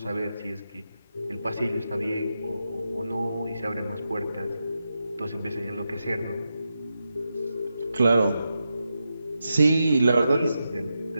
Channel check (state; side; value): inverted; both; correlation -0.88